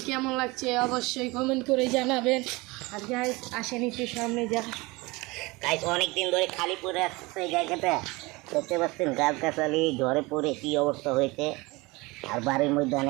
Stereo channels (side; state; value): left; quieter; 23.5 dB